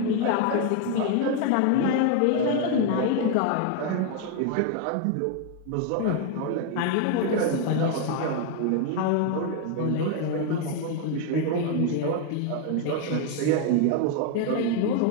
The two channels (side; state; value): both; different; correlation 0.00